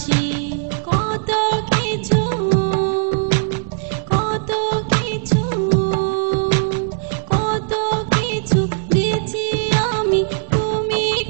কত কিছু কত কিছু কত কিছু দিয়েছি আমি তুমি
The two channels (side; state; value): left; silent; 66 dB below the other